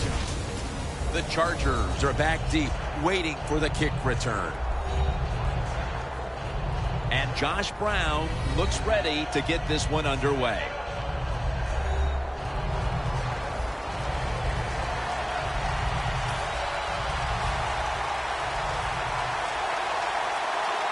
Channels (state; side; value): identical; both; correlation 1.00